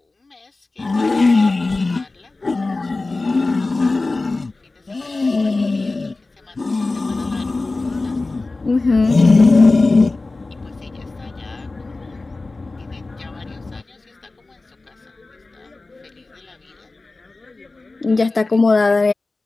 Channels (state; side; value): quieter; right; 3.3 dB